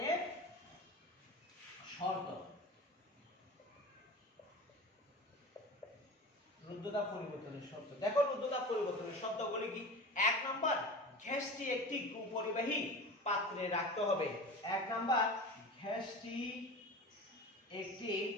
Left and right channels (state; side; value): normal; both; correlation 0.32